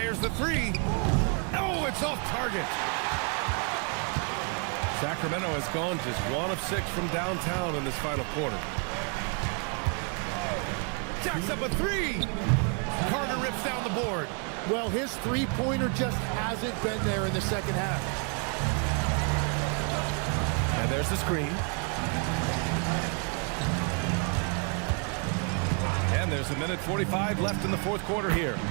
the three. Oh, it's off target. Sacramento has gone just 1 of 6 from downtown in this final quarter. Jacks up a three. Carter rips down the board. Well, his three-pointer just hasn't been there in the second half. And there's the screen. And there's a minute 45 left in the fourth quarter here.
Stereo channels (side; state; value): left; quieter; 38.3 dB